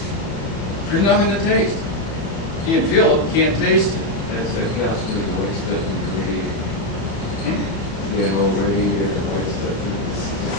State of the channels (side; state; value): right; late; 30 ms